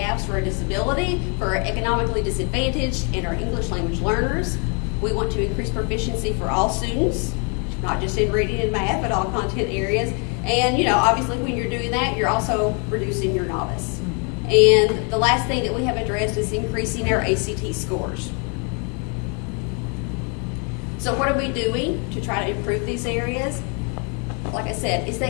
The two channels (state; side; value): quieter; right; 36.6 dB